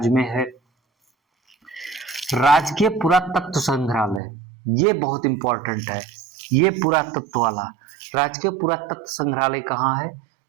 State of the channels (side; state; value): left; drops out; at 4.2 s